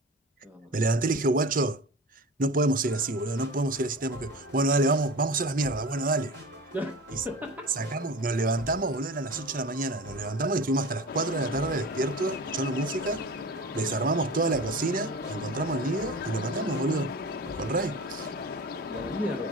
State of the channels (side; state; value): both; normal; correlation 0.34